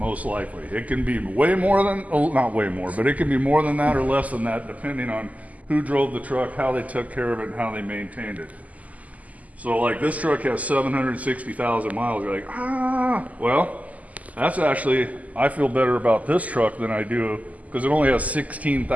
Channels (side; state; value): left; late; 0.074 ms